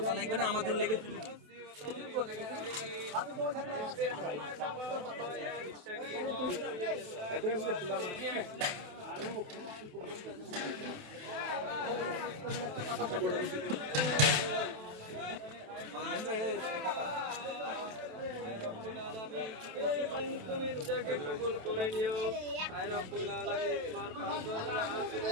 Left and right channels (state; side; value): late; left; 28 ms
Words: লাগবে না, আমাদের লেগে তুমি রোজাকে কবুল করে নিও। আয় রব্বুল আলামিন,